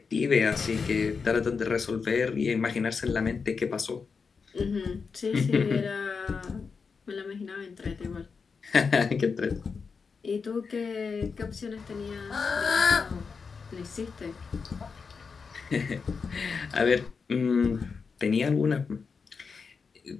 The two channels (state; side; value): quieter; right; 5.3 dB